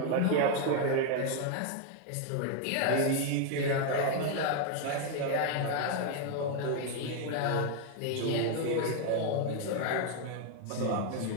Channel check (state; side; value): different; both; correlation 0.01